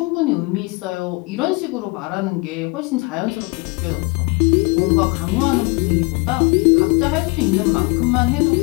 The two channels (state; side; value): quieter; right; 27.5 dB